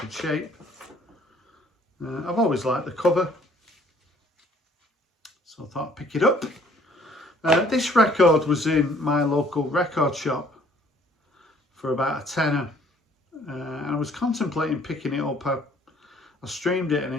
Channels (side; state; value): both; normal; correlation 0.59